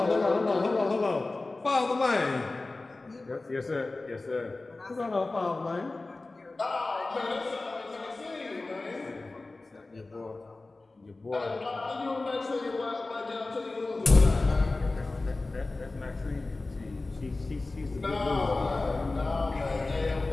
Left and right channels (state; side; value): quieter; right; 3.3 dB